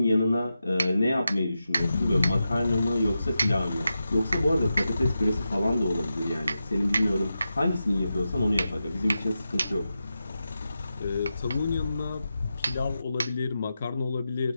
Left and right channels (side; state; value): both; inverted; correlation -0.90